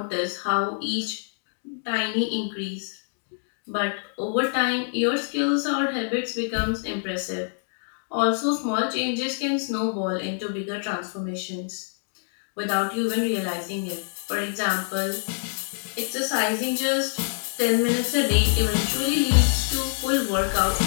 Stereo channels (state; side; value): silent; right; digital silence